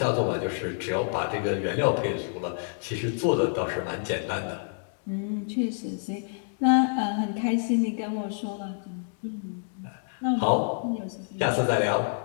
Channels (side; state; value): right; silent; digital silence